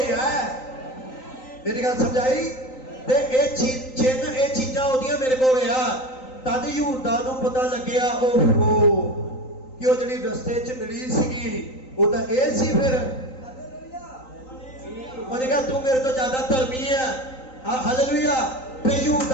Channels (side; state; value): right; late; 3.9 ms